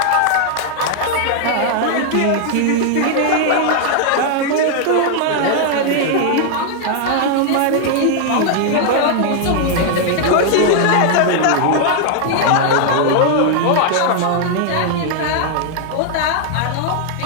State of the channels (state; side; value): different; both; correlation 0.00